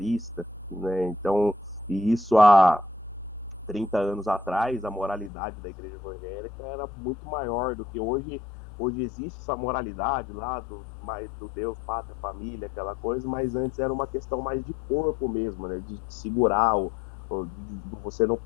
né? Então, e isso há 30 anos atrás, a moralidade da igreja evangélica era muito maior do que hoje. Hoje existe essa moralidade lá do Deus, pátria, família, aquela coisa, mas antes era uma questão mais de corpo mesmo, né? De segurar, de você não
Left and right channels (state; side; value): drops out; right; at 5.3 s